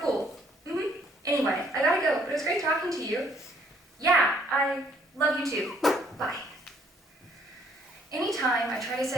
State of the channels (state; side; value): normal; both; correlation 0.64